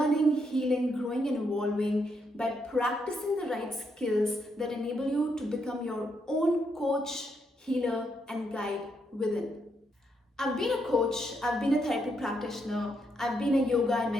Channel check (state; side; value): normal; both; correlation 0.78